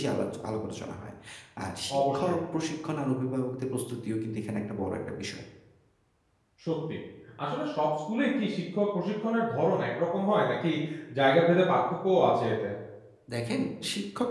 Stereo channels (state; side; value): identical; both; correlation 1.00